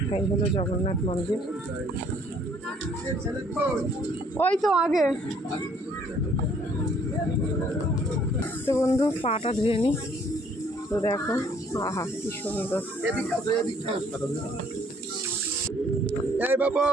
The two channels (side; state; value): both; normal; correlation 0.62